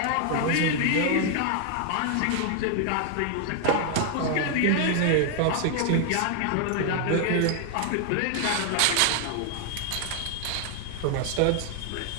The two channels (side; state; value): both; different; correlation 0.00